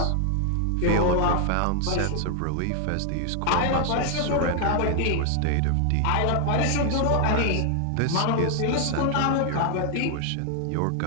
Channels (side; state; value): both; different; correlation 0.00